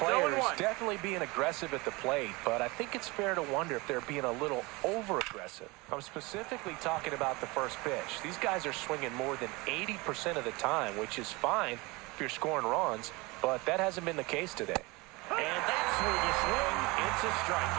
definitely being aggressive at the plate, but I think it's fair to wonder if they're being a little over-aggressive. I'm specifically talking about the first pitch. These guys are swinging more than 80% of the time, which is fine if you're scoring runs, but that hasn't been the case today. And that's where the swing, it's a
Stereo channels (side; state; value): left; quieter; 24.6 dB